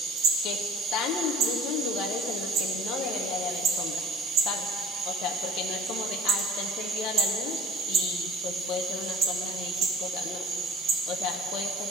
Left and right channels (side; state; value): both; normal; correlation 0.48